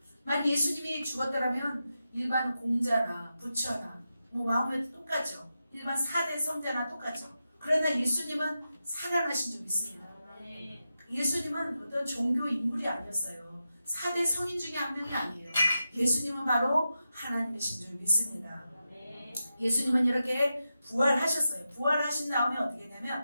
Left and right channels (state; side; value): inverted; both; correlation -0.90